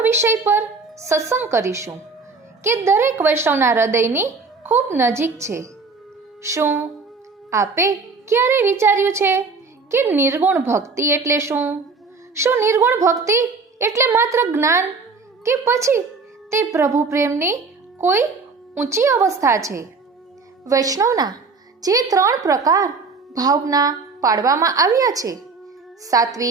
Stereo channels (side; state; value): left; quieter; 4.3 dB